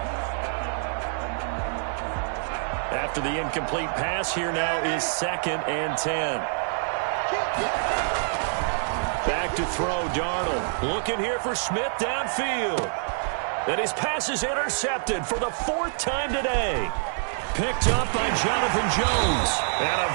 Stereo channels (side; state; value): left; silent; digital silence